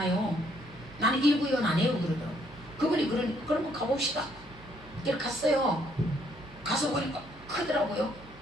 나는 일구의원 안 해요 그러더라고. 그분이 그러면 가봅시다. 그래서 갔어요. 가서 보니까 크더라고요.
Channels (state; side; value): noise; right; hum, 21 dB below the sound